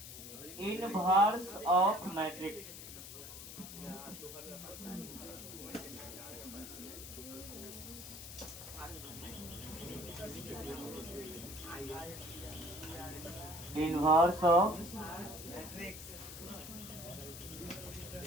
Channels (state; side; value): noise; left; hiss, 11 dB below the sound